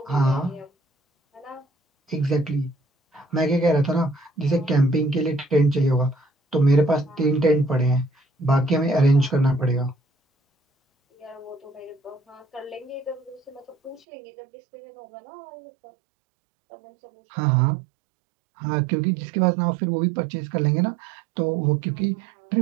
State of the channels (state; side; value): drops out; left; at 14.1 s